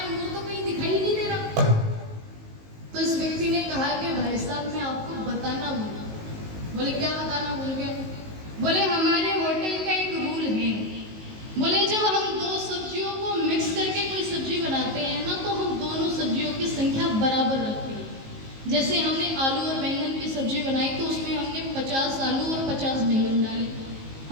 तो कहीं दिखाई नहीं दे रहा। तो इस व्यक्ति ने कहा कि भाई साहब मैं आपको बताना भूला। बोले क्या बताना भूल गए? बोले हमारे होटल का एक रूल है, बोले जब हम दो सब्जियों को मिक्स करके कोई सब्जी बनाते हैं ना, तो हम दोनों सब्जियों की संख्या बराबर रखते हैं। जैसे हमने आलू और बैंगन की सब्जी बनाई तो उसमें हमने 50 आलू और 50 बैंगन डाले।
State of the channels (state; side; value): late; left; 19 ms